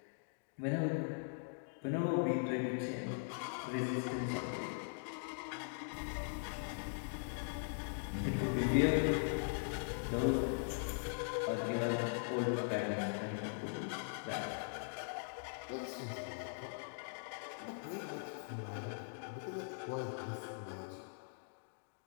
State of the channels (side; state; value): right; silent; digital silence